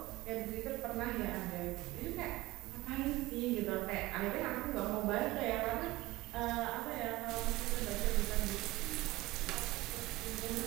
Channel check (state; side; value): quieter; left; 19.0 dB